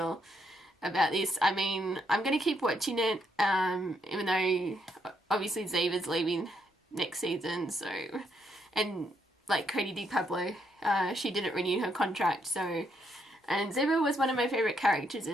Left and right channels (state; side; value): normal; both; correlation 0.75